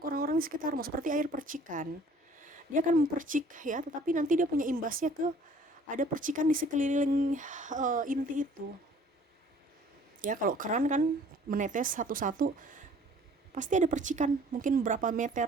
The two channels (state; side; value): normal; both; correlation 0.54